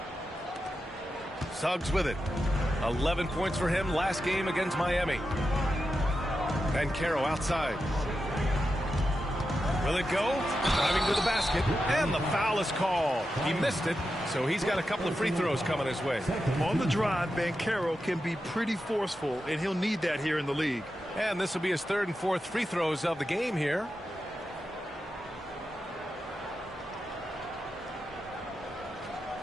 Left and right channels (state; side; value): normal; both; correlation 0.89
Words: Suggs with it. 11 points for him last game against Miami. And Caro outside. Will it go? Driving to the basket. And the foul is called. He missed it, so he's got a couple of free throws coming his way. On the drive, Banchero can be pretty forceful, and he'll need that here in the league. And this will be his 3rd and 4th free throws of the game here.